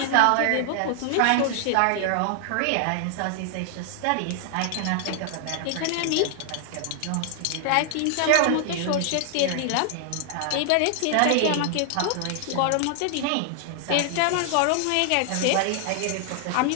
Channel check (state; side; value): different; both; correlation 0.00